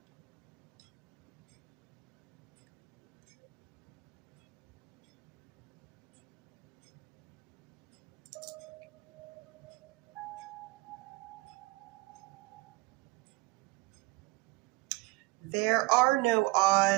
There are no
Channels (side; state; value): left; quieter; 22.8 dB